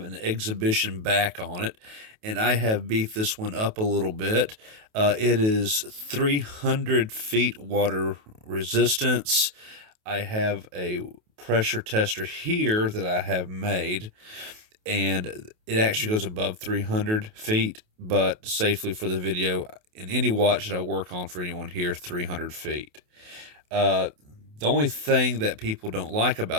an exhibition back on it, and I have beefed this one up a little bit. It is 300 feet water resistance. I have a pressure tester here that I have made, and it actually goes above 300 feet, but safely for the video, in any watch that I work on for anyone here, 300 feet. Uh, the only thing that people don't like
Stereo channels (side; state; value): left; late; 28 ms